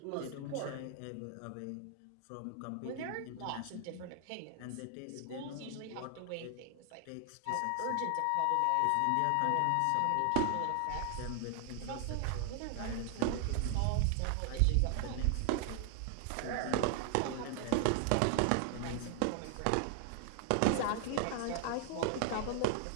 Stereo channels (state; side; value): different; both; correlation 0.00